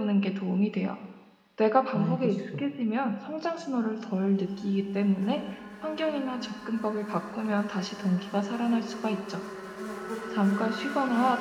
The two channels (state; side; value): identical; both; correlation 1.00